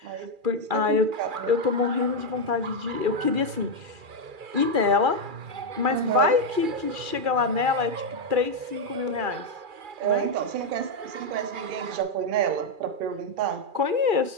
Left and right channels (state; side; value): late; left; 2.4 ms